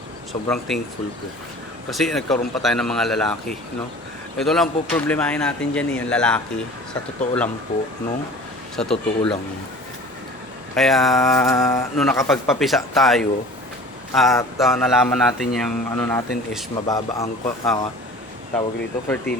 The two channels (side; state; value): both; normal; correlation 0.43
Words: Sobrang thankful po. Kasi nagkaroon pa tayo ng mga lalaki, no? Ito lang po problemahin natin dyan yung lalaki. Sa totoo lang po, no? Sa totoo lang. Kaya, nung nakapagpapisa tayo, at nalaman natin yung ano natin is mababa ang tawag dito,